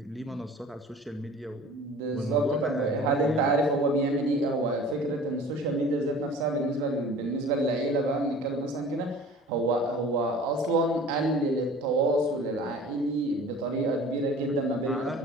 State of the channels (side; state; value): both; normal; correlation 0.43